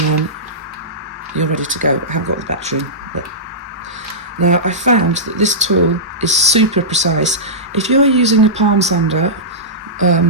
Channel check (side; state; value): both; normal; correlation -0.17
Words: you're ready to go. I haven't got the battery in, but now I found that this tool is super precise. If you're using a palm sander